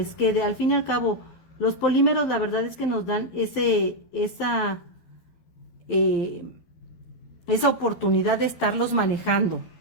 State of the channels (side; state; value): right; late; 12 ms